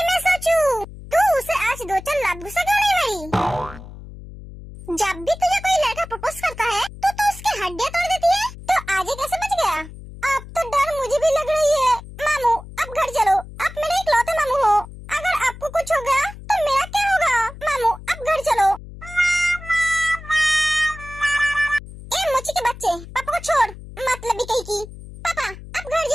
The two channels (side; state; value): left; noise; hum, 15 dB below the sound